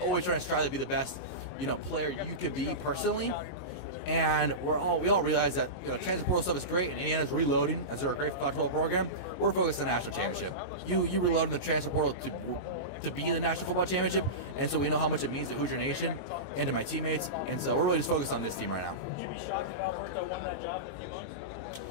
trying to strive to be the best, player you could be personally. And we all realize that, transfer portal stuff is great, and Indiana's reloading as they're a great college football program. We're focused on the national championship. You reload in the transfer portal to be in the national football championship, and so we know how much it means to Hoosier Nation and to my teammates, and so we're really just focused on this team right now.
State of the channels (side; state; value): right; late; 22 ms